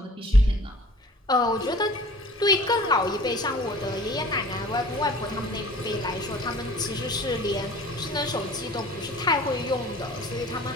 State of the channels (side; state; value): both; normal; correlation 0.46